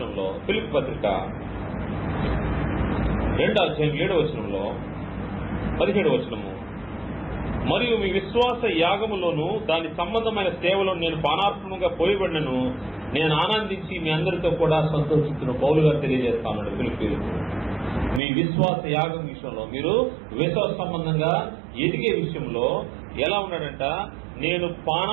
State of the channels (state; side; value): drops out; left; at 18.2 s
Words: ఫిలిప్పీ పత్రిక 2వ అధ్యాయం 7వ వచనంలో 17వ వచనము, మరియు మీ విశ్వాస యాగములోను దాని సంబంధమైన సేవలో నేను పానార్పణంగా పోయబడినను నేను ఆనందించి మీ అందరితో కూడా సంతోషిస్తున్న పౌలు గారు తెలియజేస్తాను. ఫిలిప్పీలకు మీ విశ్వాస యాగం విషయంలో, మీరు విశ్వాస సంబంధంగా ఎదిగే విషయంలో ఎలా ఉన్నాడంట, నేను